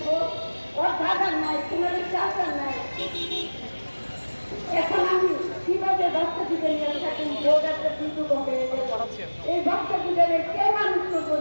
ওর দাদা নাই, তোমার চাষা নাই। এখন আমি কিভাবে ভক্ত দিকে নিয়ে থাকুন? বোর্ড একটা কিন্তু এই ভক্ত দিকে কে মানুষ করবো,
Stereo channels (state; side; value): inverted; both; correlation -1.00